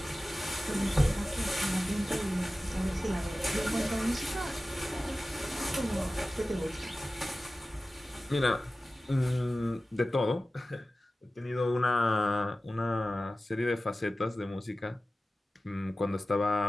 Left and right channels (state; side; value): normal; both; correlation 0.95